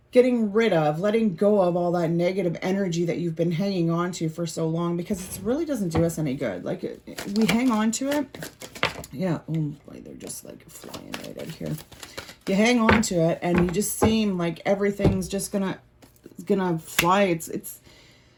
getting rid of, letting go of all that negative energy that you've been hanging on to for so long, because it really doesn't do us any good. Like, we hang on to it. Yeah. Oh boy, they're just like flying right out here. You hang on to it and you just seem like everything's just gonna fly. It's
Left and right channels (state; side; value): identical; both; correlation 1.00